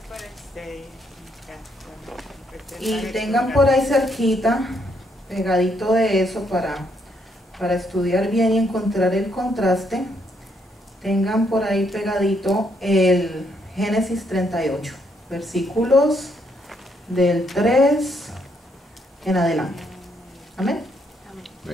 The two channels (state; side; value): normal; both; correlation 0.74